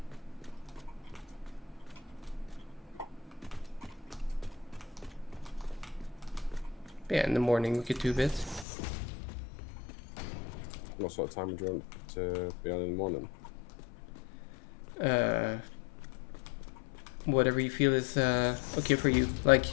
Yeah, in the morning we could do a bit. What sort of time do you want to be on in the morning? Whatever you feel is okay for you. Like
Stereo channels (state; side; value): drops out; right; at 8.7 s